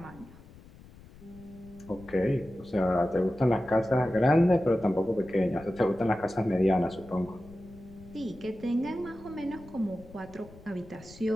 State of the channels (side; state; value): left; noise; rumble, 21 dB below the sound